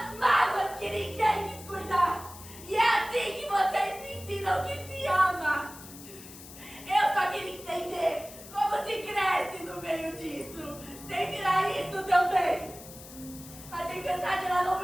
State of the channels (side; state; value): left; noise; hiss, 16 dB below the sound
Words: mágoas que ninguém quis cuidar! E é assim que vocês me ensinam que se ama! Eu só queria entender como se cresce no meio disso, sem virar isso também! A tempestade, ela não